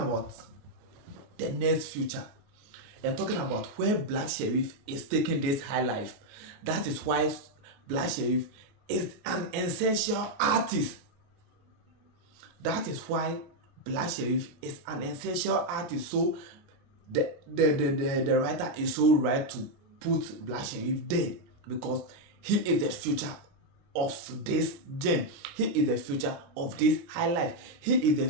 the next future and talking about where Black Sherif is taking this high life, that is why Black Sherif is an essential artist. That is why Black Sherif is an essential artist. So the writer is so right to put Black Sherif there because he is the future of this gen. He is the future of this high life. He is the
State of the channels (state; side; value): late; left; 29 ms